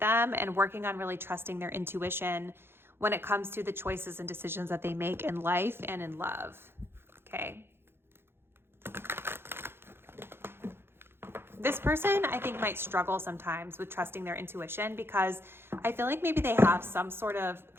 and working on really trusting their intuition when it comes to the choices and decisions that they make in life and in love. Okay. This person, I think, might struggle sometimes with trusting their intuition because I feel like maybe they have some sort of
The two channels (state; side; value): late; left; 0.11 ms